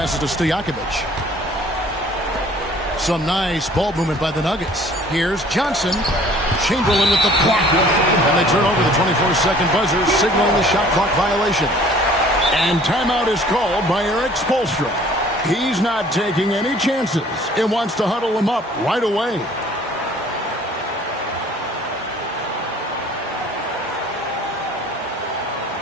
to Stojakovic. Some nice ball movement by the Nuggets. Here's Johnson. Chamberlain with the block. And they turn over the 24-second buzzer, signaling the shot clock violation. And timeout is called by Eric Spoelstra. He's not taking any chances and wants to huddle him up right away.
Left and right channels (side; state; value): both; normal; correlation 0.53